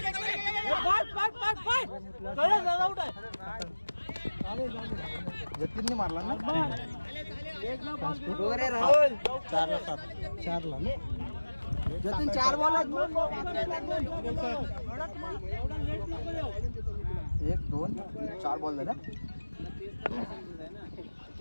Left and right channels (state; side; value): inverted; both; correlation -1.00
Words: जतीनने मारला ना 4 ला जतीन 4 बॉल 1 2 4 बॉल झाला